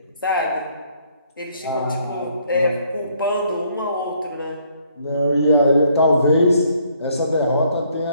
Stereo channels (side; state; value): both; inverted; correlation -0.66